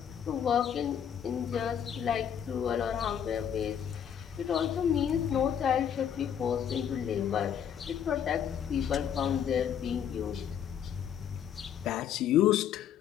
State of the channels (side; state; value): right; quieter; 8.8 dB